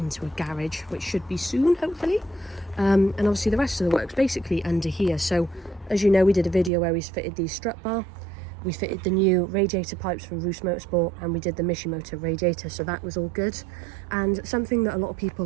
a garage, which should be soon, hopefully. And obviously the rest of the work's basically under here. So as you know, we did a video where we fitted the strut bar. We fitted the new radiator pipes from Roost Motorsport, and we did the Mishimoto radiator, so that was all good. And something that a lot of people,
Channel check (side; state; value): left; drops out; at 6.7 s